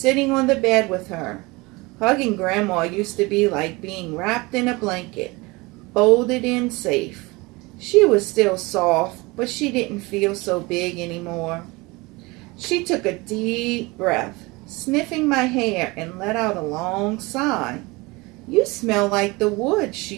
on the bed with her. Hugging Grandma used to be like being wrapped in a blanket, folded in safe. She was still soft, but she didn't feel so big anymore. She took a deep breath, sniffing my hair, and let out a long sigh. "You smell like the woods," she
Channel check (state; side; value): quieter; left; 24.0 dB